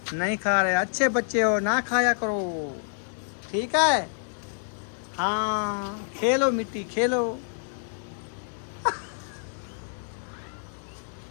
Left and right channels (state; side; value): silent; right; digital silence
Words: नहीं खा रहे, अच्छे बच्चे हो, ना खाया करो, ठीक है। हाँ खेलो मिट्टी खेलो।